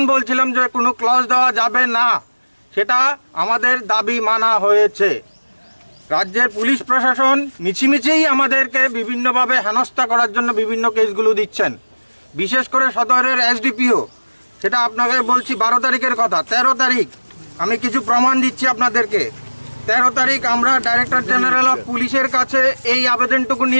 বলছিলাম যে কোনো ক্লজ দেওয়া যাবে না, সেটা আমাদের দাবি মানা হয়েছে। রাজ্যের পুলিশ প্রশাসন মিছিমিছিই আমাদেরকে বিভিন্নভাবে হেনস্থা করার জন্য বিভিন্ন কেসগুলো দিচ্ছেন। বিশেষ করে সদরের এসডিপিও, সেটা আপনাকে বলছি 12 তারিখের কথা। 13 তারিখ আমি কিছু প্রমাণ দিচ্ছি আপনাদেরকে। 13 তারিখ আমরা ডাইরেক্টর জেনারেল অফ পুলিশের কাছে এই আবেদনটুকু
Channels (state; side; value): inverted; both; correlation -1.00